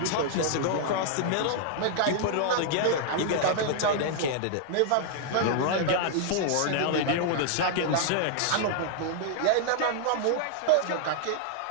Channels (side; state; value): both; different; correlation -0.01